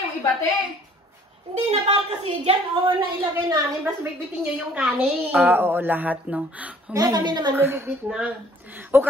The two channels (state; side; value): normal; both; correlation 0.56